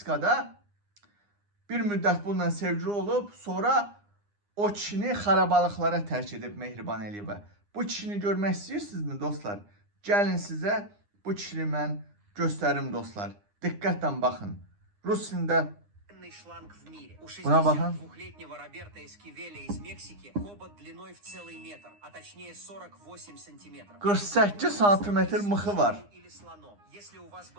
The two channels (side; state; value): left; late; 9.8 ms